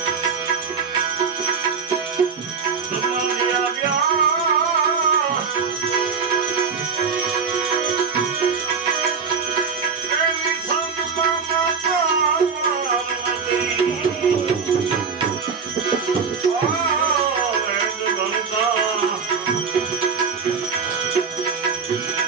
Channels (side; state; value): left; quieter; 5.6 dB